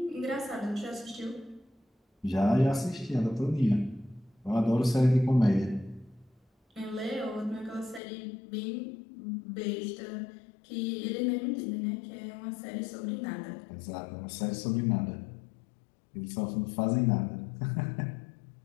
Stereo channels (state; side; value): drops out; right; at 8.0 s